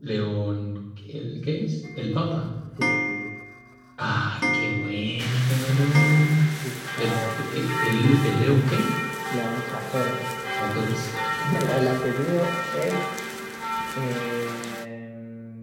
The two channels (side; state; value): both; identical; correlation 1.00